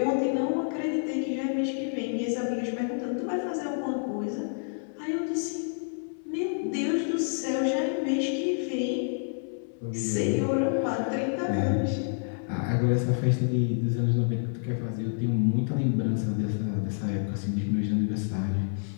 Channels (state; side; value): silent; right; 59 dB below the other